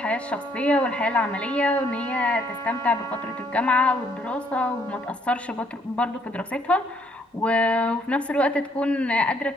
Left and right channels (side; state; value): both; normal; correlation 0.68